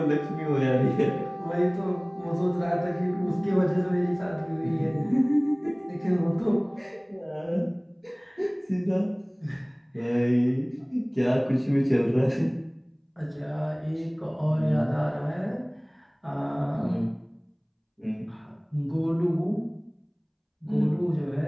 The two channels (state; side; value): identical; both; correlation 1.00